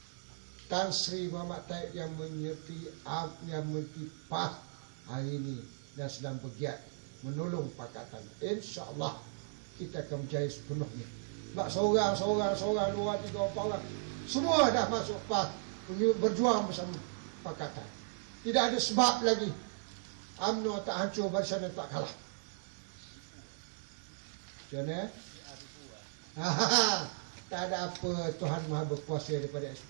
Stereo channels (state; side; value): silent; left; digital silence